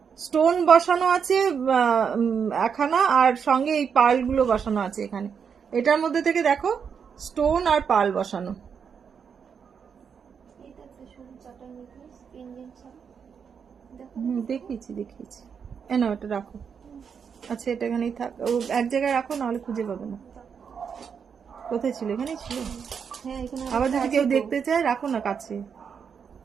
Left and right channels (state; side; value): quieter; left; 6.8 dB